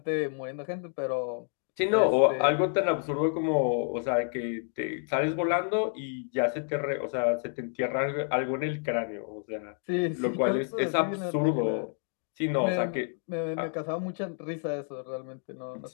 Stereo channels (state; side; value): silent; right; 58 dB below the other